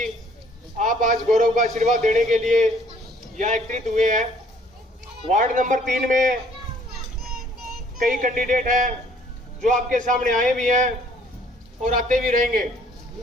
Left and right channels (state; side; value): normal; both; correlation 0.60